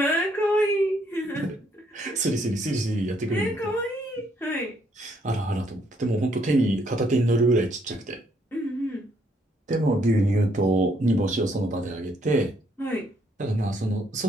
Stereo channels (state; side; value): normal; both; correlation 0.70